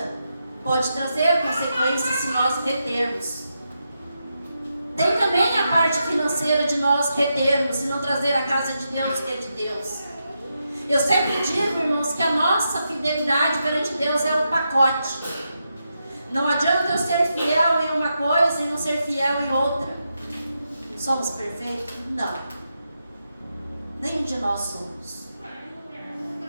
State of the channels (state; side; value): inverted; both; correlation -0.85